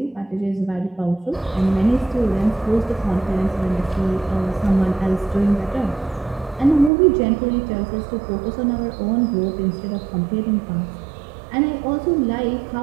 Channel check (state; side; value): drops out; left; at 6.9 s